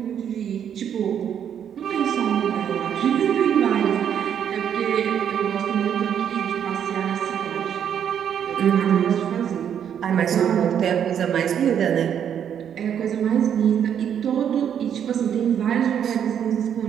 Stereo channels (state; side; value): quieter; left; 8.8 dB